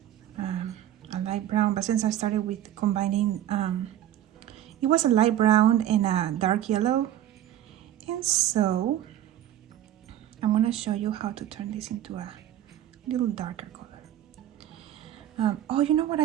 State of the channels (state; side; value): quieter; left; 11.8 dB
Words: a light brown, but since I started with combining, it was a light brown and a dark yellow, and so I'm going to show you how to turn this into a little darker color. Oh, you know what